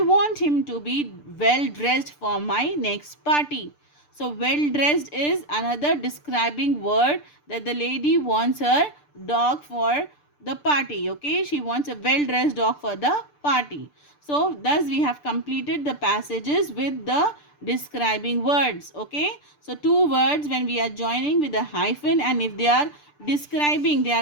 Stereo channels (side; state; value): right; late; 6.8 ms